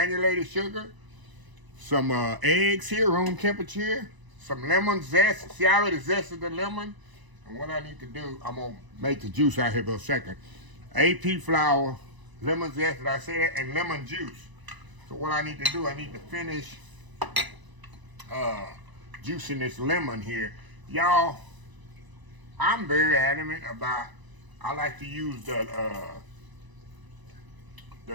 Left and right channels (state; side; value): late; left; 1.0 ms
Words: sugar, some eggs here, room temperature, some lemon zest. See, I already zested the lemon. And what I need to do, I'm going to make the juice out here for a second. AP flour, lemon zest, did I say that? And lemon juice. So what I need to do, I need to finish juicing this lemon here. Y'all, I'm very adamant about, I like to use the